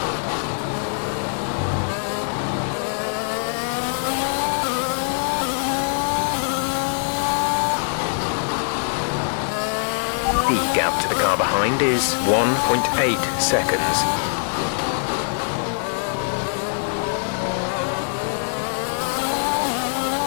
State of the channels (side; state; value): right; silent; digital silence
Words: The gap to the car behind is 1.8 seconds.